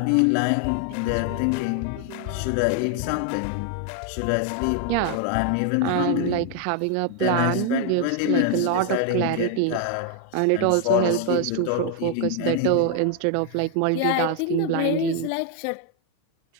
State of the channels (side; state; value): both; different; correlation 0.00